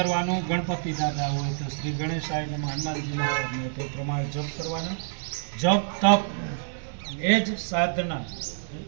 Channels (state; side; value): silent; left; digital silence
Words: ગણપતિ દાદા હોય તો શ્રી ગણેશાય નમઃ, હનુમાનજીના હોય તે પ્રમાણે જપ કરવાનો. જપ તપ એ જ સાધના